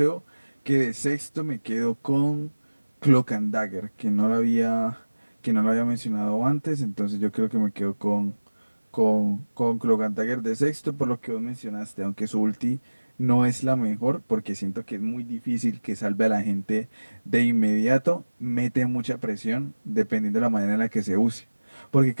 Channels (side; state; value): both; inverted; correlation -1.00